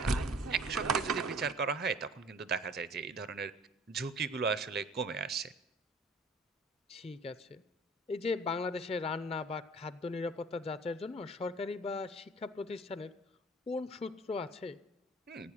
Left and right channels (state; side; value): normal; both; correlation 0.49